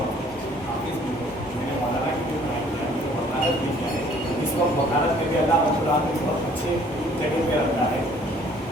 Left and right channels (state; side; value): normal; both; correlation 0.57